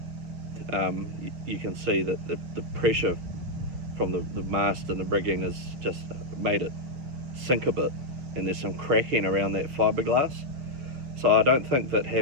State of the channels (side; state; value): left; late; 6.5 ms